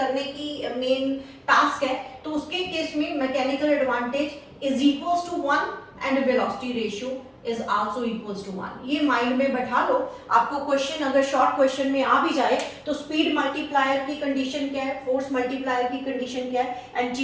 की मेन टास्क है, तो उसके केस में mechanical advantage is equals to 1 and velocity ratio is also equals to 1। ये माइंड में बैठा लो। आपको क्वेश्चन अगर शॉर्ट क्वेश्चन में आ भी जाए तो स्पीड मल्टीप्लायर की कंडीशन क्या है, फोर्स मल्टीप्लायर की कंडीशन क्या है and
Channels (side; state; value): both; identical; correlation 1.00